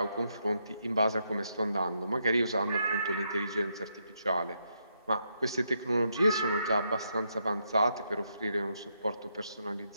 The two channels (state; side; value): inverted; both; correlation -0.79